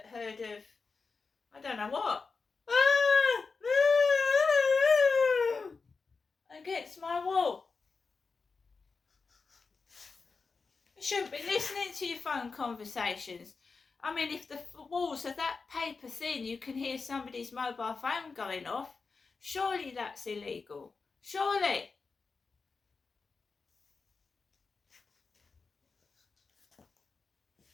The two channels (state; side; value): quieter; right; 4.6 dB